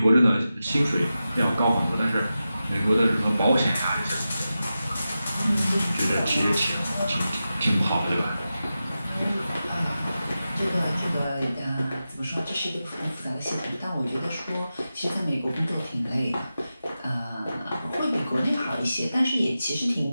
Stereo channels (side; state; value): both; inverted; correlation -0.92